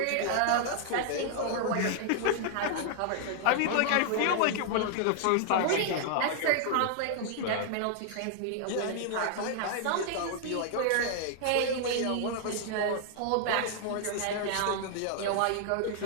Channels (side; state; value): both; different; correlation -0.01